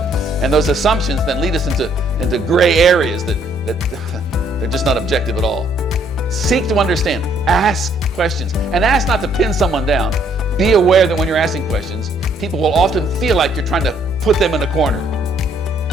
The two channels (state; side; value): normal; both; correlation 0.66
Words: And those assumptions then lead us into gray areas that they're just not objective at all. Seek to understand. Ask questions. And ask not to pin someone down. Be aware that when you're asking questions, people will often feel like you're trying to put them in a corner.